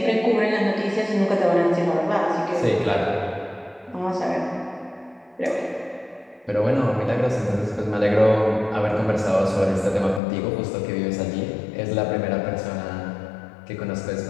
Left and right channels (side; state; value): right; drops out; at 10.2 s